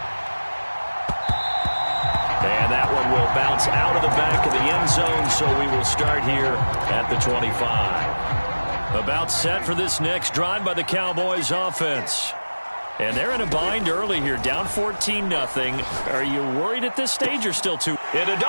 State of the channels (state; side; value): inverted; both; correlation -1.00